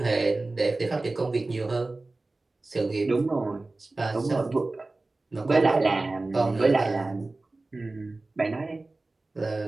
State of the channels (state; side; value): quieter; left; 3.2 dB